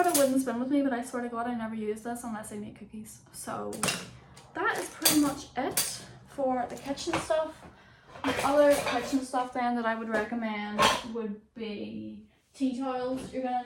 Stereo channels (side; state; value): both; identical; correlation 1.00